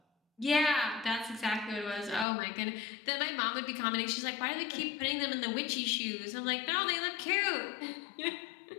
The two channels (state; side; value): drops out; right; at 2.2 s